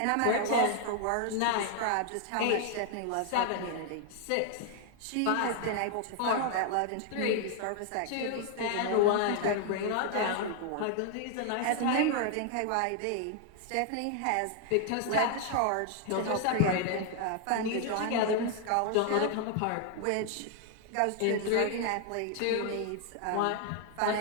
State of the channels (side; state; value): both; different; correlation 0.00